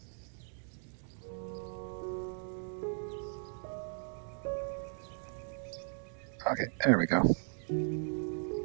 Okay, there we go.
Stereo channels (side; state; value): left; silent; digital silence